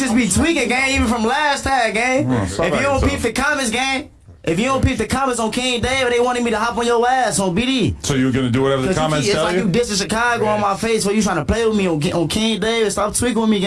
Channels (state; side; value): identical; both; correlation 1.00